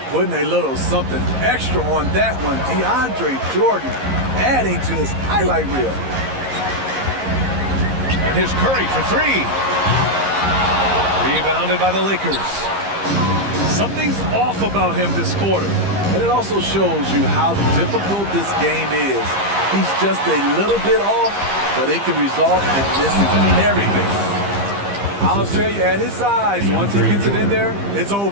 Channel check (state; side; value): late; left; 15 ms